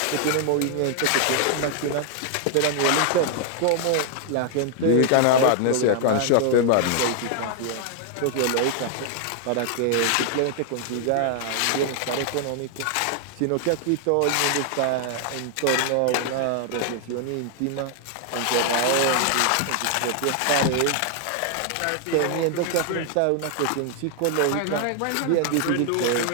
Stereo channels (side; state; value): both; different; correlation 0.00